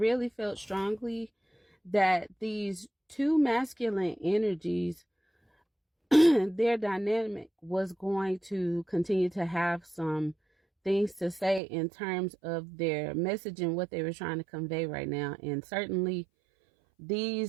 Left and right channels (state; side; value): drops out; left; at 11.6 s